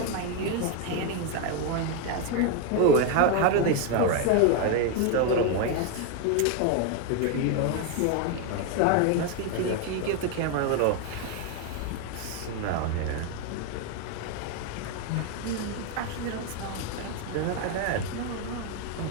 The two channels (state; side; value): different; both; correlation 0.01